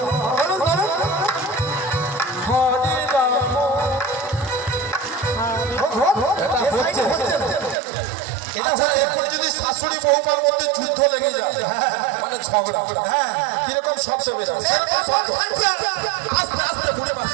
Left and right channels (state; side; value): drops out; left; at 7.8 s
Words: বলুন বলুন, হরে রাম। আচ্ছা, এখন যদি শাশুড়ি বৌমার মধ্যে যুদ্ধ লেগে যায়, মানে ঝগড়া, হ্যাঁ, কিরকম শব্দ বেরোয়? আস্তে আস্তে বুড়ে মাছ,